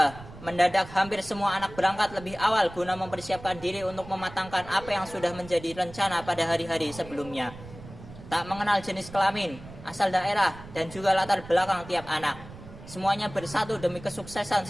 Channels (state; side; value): noise; right; rumble, 16 dB below the sound